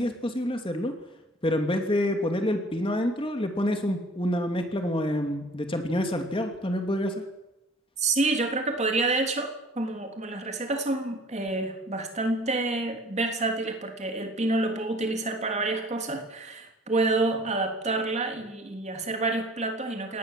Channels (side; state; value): both; normal; correlation 0.51